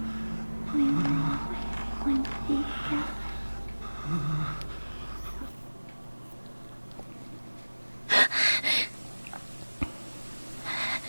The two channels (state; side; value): inverted; both; correlation -1.00